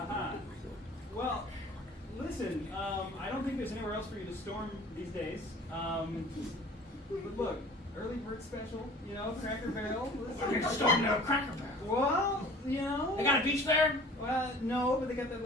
Well, listen, I don't think there's anywhere else for you to storm these days. But look, early bird special, you know, Cracker Barrel. We're going to storm the Cracker Barrel. Well, you know. They got a beach there? Well, no, but they got that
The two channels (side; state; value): both; normal; correlation 0.46